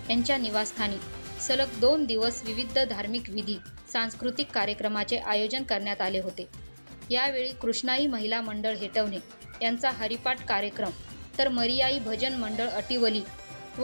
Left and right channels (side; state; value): both; inverted; correlation -1.00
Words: यांच्या निवासस्थानी सलग 2 दिवस विविध धार्मिक विधी सांस्कृतिक कार्यक्रमाचे आयोजन करण्यात आले होते. यावेळी कृष्णाई महिला मंडळ हेटवणे यांचा हरिपाठ कार्यक्रम तर मरियाई भजन मंडळ अटिवली